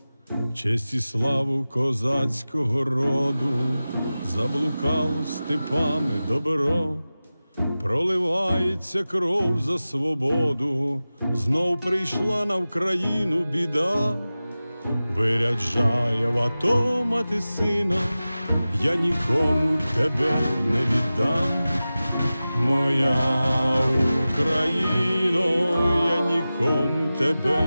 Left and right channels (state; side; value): inverted; both; correlation -0.96